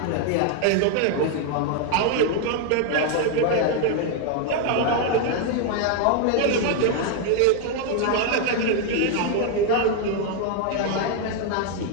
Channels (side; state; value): both; different; correlation 0.00